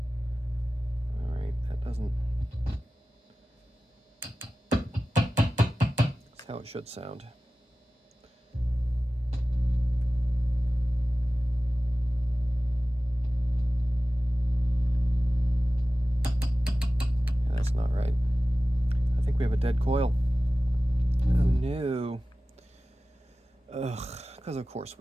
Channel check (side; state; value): both; normal; correlation 0.96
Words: Alright, that doesn't... That's how it should sound. Yeah, that's not right. I think we have a dead coil. Oh no. Ugh, because of course